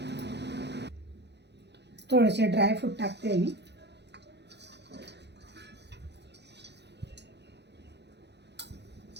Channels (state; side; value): late; left; 0.50 ms